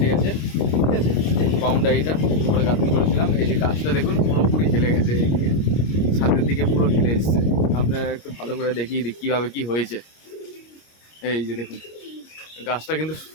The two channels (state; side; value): late; right; 26 ms